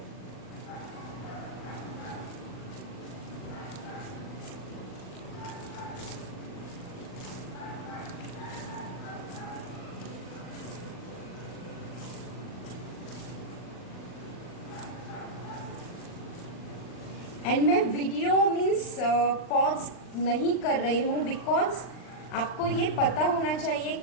एंड मैं वीडियो मीन्स पॉज नहीं कर रही हूँ, बिकॉज आपको ये पता होना चाहिए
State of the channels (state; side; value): late; right; 39 ms